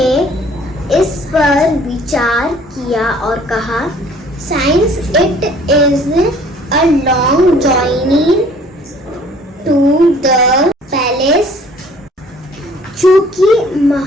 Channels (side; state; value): both; normal; correlation 0.55